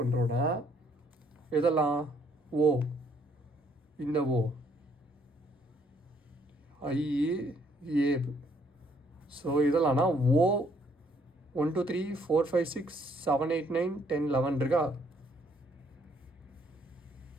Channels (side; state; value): both; normal; correlation 0.67